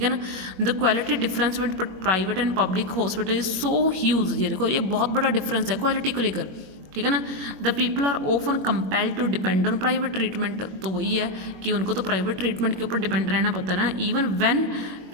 है ना। The quality difference with private and public hospital is so huge, ये देखो ये बहुत बड़ा डिफरेंस है क्वालिटी को लेकर, ठीक है ना। The people are often compelled to depend on private treatment, तो वही है कि उनको तो प्राइवेट ट्रीटमेंट के ऊपर डिपेंड रहना पड़ता है ना, इवन व्हेन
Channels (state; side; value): late; left; 21 ms